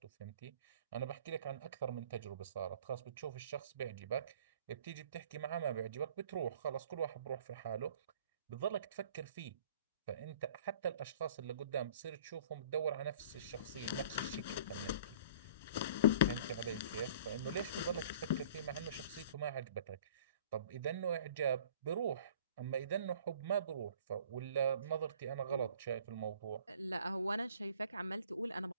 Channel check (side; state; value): both; inverted; correlation -0.50